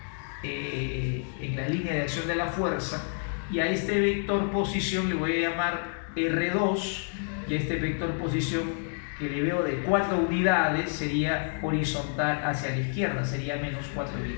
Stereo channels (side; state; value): right; silent; 59 dB below the other